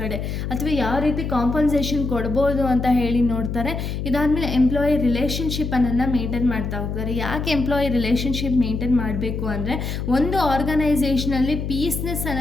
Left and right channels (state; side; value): noise; left; hum, 4 dB below the sound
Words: ಅಥವಾ ಯಾವ ರೀತಿ ಕಾಂಪನ್ಸೇಷನ್ ಕೊಡ್ಬೋದು ಅಂತ ಹೇಳಿ ನೋಡ್ತಾರೆ. ಇದಾದಮೇಲೆ ಎಂಪ್ಲಾಯಿ ರಿಲೇಷನ್ಶಿಪ್ ಅನ್ನೋದನ್ನ ಮೇಂಟೈನ್ ಮಾಡ್ತಾ ಹೋಗ್ತಾರೆ. ಯಾಕೆ ಎಂಪ್ಲಾಯಿ ರಿಲೇಷನ್ಶಿಪ್ ಮೇಂಟೈನ್ ಮಾಡಬೇಕು ಅಂದರೆ, ಒಂದು ಆರ್ಗನೈಸೇಷನಲ್ಲಿ ಪೀಸ್ನೆಸ್